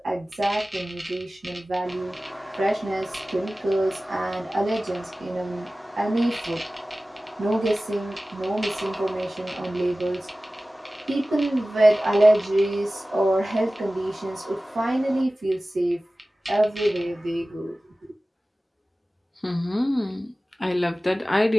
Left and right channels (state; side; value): normal; both; correlation 0.97